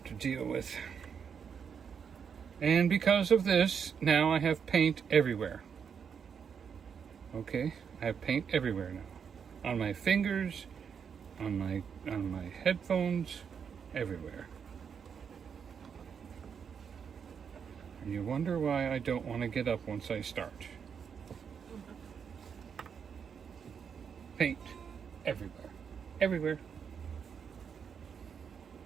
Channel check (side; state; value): left; quieter; 6.9 dB